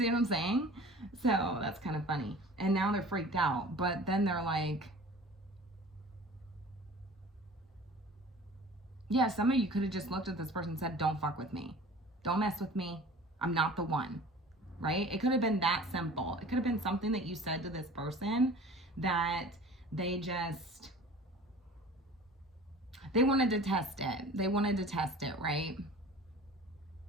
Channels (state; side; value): normal; both; correlation 0.43